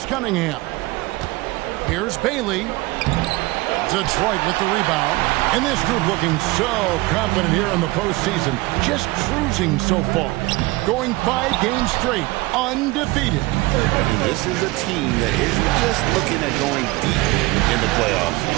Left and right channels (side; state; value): left; quieter; 21.5 dB